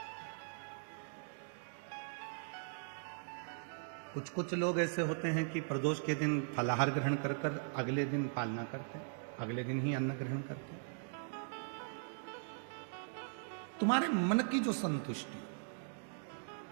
कुछ लोग ऐसे होते हैं कि प्रदोष के दिन फलाहार ग्रहण कर अगले दिन पालना करते हैं, अगले दिन ही अन्न ग्रहण करते हैं। तुम्हारे मन की जो संतुष्टि,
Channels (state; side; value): silent; left; digital silence